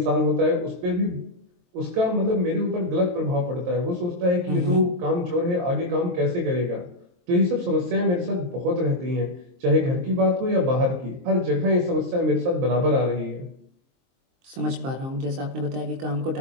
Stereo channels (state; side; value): late; left; 23 ms